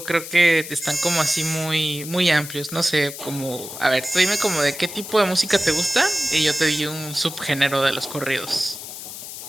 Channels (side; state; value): left; noise; hiss, 11 dB below the sound